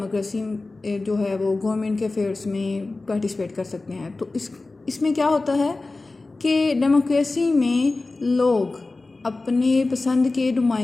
जो है वो गवर्नमेंट के अफेयर्स में पार्टिसिपेट कर सकते हैं? तो इसमें क्या होता है कि डेमोक्रेसी में लोग अपने पसंद के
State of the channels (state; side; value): quieter; right; 3.3 dB